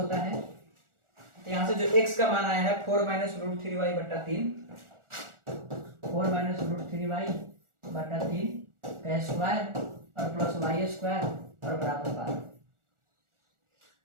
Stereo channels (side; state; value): left; late; 1.4 ms